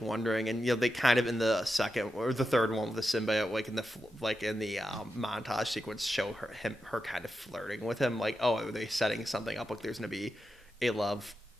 wondering, and they kind of in the second or the third one with the symbiote, like in the montage sequence, show her kind of flirting with him. Like, oh, are they setting something up? Like, there's gonna be a love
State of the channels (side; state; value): both; normal; correlation 0.89